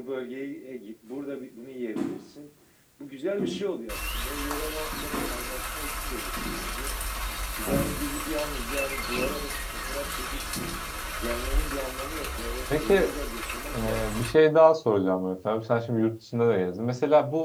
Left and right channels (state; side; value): identical; both; correlation 1.00